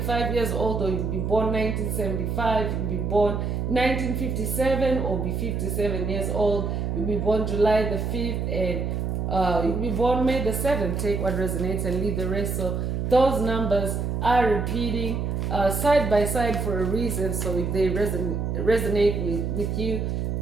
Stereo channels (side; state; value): right; noise; hum, 1 dB below the sound